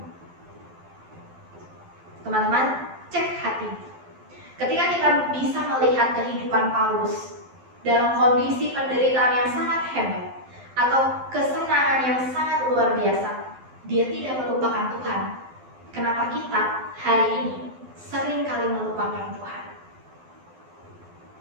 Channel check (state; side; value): late; left; 12 ms